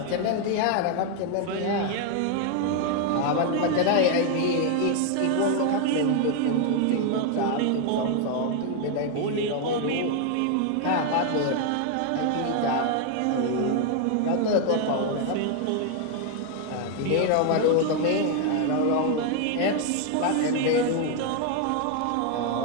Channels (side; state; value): both; different; correlation 0.00